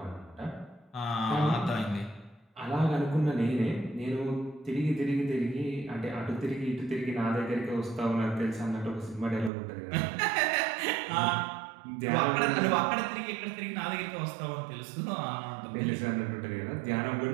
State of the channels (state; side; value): drops out; left; at 9.5 s